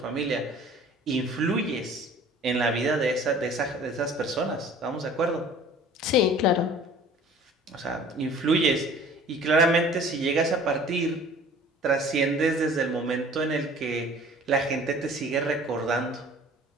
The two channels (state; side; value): normal; both; correlation 0.48